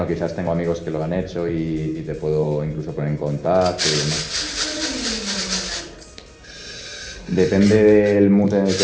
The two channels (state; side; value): identical; both; correlation 1.00